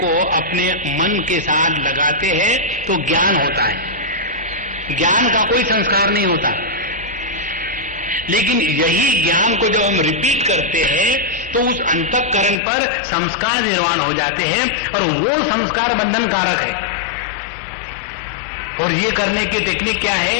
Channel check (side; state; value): right; drops out; at 12.6 s